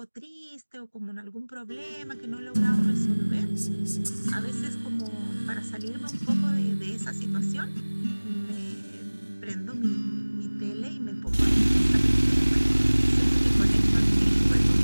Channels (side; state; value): both; inverted; correlation -1.00